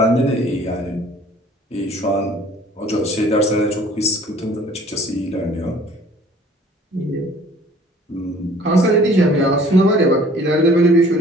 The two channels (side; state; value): both; normal; correlation 0.53